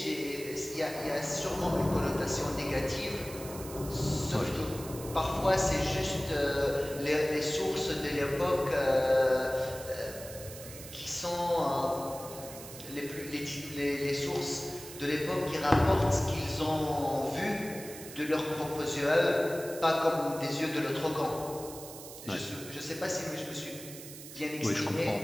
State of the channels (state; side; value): noise; right; hiss, 13 dB below the sound